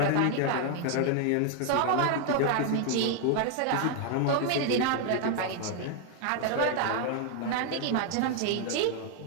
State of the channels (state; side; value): different; both; correlation 0.01